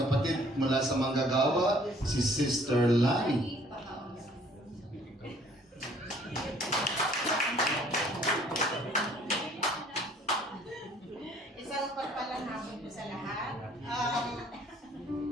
mula sa Manggagawa, si Sister Lani. Isang pagpalang hapon po sa lahat.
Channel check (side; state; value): both; normal; correlation 0.58